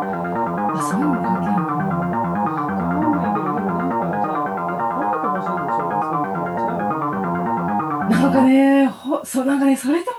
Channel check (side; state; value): both; identical; correlation 1.00